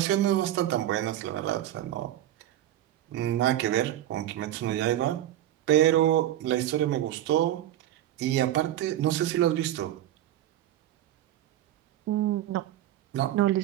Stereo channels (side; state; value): left; quieter; 12.9 dB